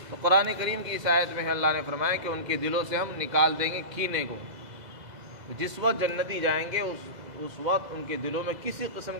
تو قرآن کریم کی اس آیت میں اللہ نے فرمایا کہ ان کے دلوں سے ہم نکال دیں گے کینے کو۔ جس وقت جنتی جائیں گے اس وقت ان کے دلوں میں کسی قسم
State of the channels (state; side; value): late; left; 2.0 ms